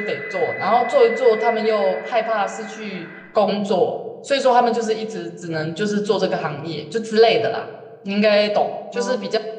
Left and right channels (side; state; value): both; identical; correlation 1.00